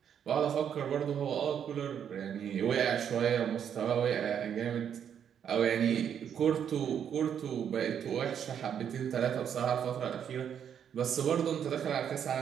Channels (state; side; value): quieter; left; 8.5 dB